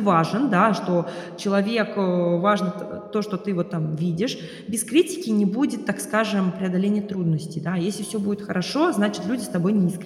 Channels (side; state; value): both; identical; correlation 1.00